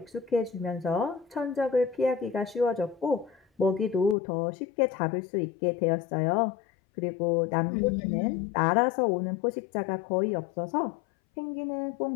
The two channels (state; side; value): drops out; right; at 4.2 s